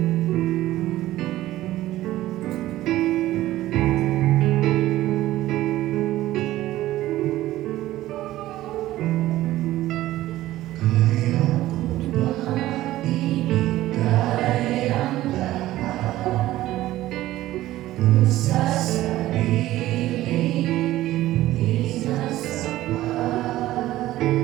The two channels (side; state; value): left; quieter; 15.4 dB